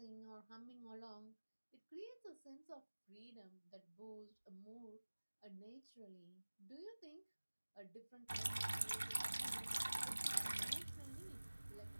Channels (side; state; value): both; inverted; correlation -1.00